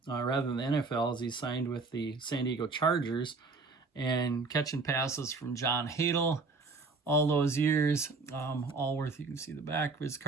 rather than the NFL as he signed with the San Diego Chargers and catching passes from John Hadle all those years. Allworth, you can see the back of his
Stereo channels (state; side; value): quieter; left; 4.0 dB